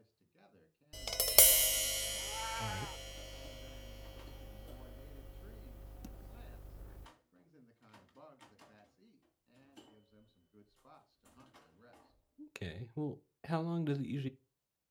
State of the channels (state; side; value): identical; both; correlation 1.00